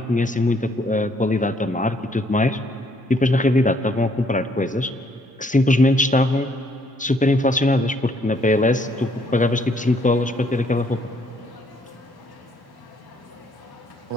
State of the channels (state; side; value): normal; both; correlation 0.67